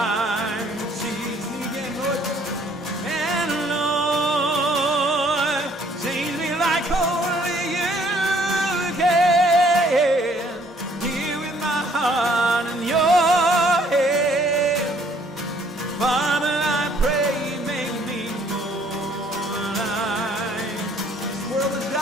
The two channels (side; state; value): both; normal; correlation 0.61